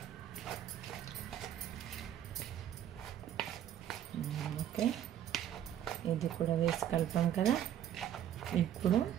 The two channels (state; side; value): quieter; left; 10.7 dB